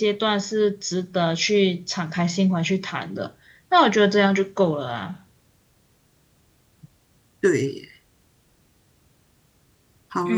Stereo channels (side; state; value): both; identical; correlation 1.00